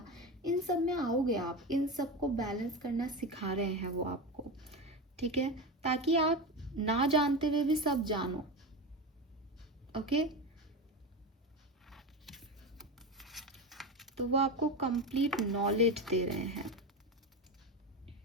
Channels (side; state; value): both; normal; correlation 0.21